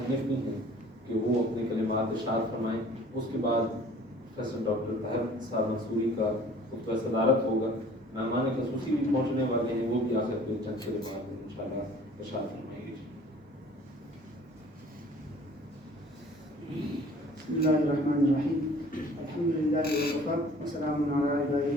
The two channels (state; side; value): normal; both; correlation 0.51